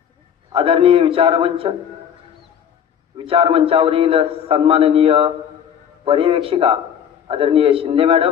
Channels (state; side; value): quieter; right; 8.7 dB